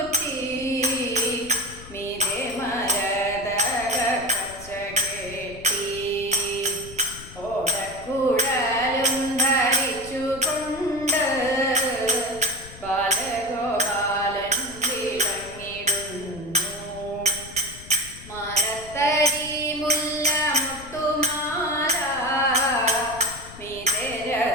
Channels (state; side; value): noise; left; rumble, 17 dB below the sound